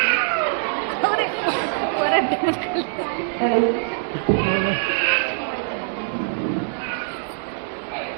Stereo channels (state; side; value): silent; left; 63 dB below the other